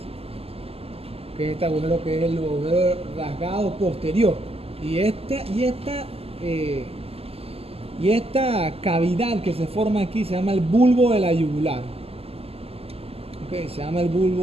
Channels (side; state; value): left; late; 0.29 ms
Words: que es este agujero que es el agujero rasgado posterior, y esta cavidad que se forma aquí se llama el bulbo de la yugular. Okay, se llama el